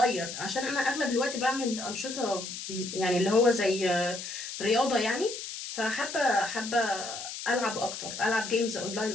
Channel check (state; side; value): noise; left; hiss, 8 dB below the sound